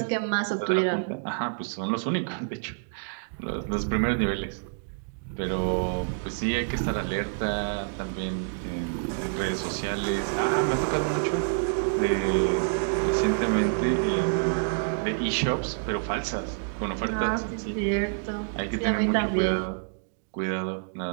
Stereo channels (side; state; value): left; silent; digital silence